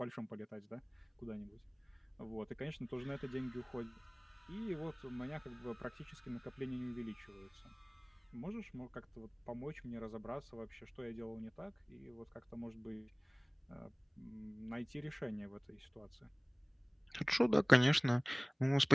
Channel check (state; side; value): identical; both; correlation 1.00